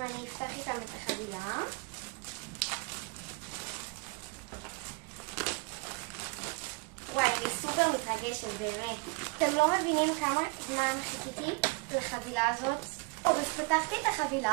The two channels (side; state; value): left; quieter; 30.5 dB